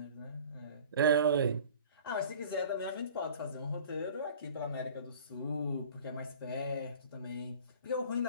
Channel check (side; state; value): both; inverted; correlation -0.45